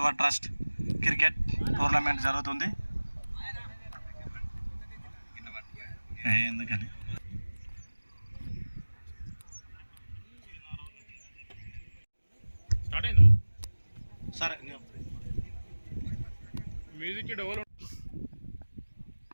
trust cricket tournament జరుగుతుంది. ఎందుకని స్టార్ట్ అయిందా? సరే మ్యూజిక్ డెవలప్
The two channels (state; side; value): inverted; both; correlation -1.00